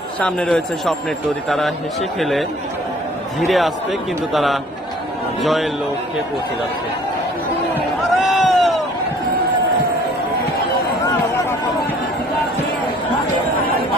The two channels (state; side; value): normal; both; correlation 0.54